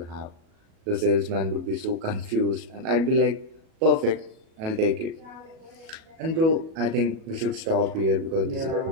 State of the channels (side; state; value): left; late; 37 ms